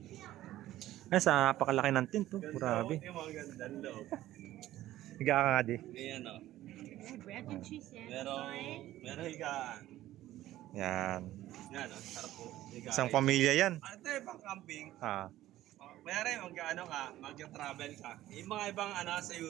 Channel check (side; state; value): left; quieter; 14.6 dB